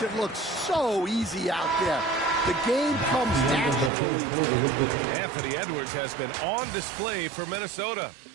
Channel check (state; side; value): drops out; left; at 3.9 s